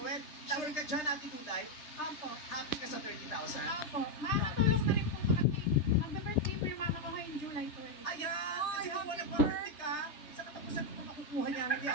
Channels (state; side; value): late; right; 3.3 ms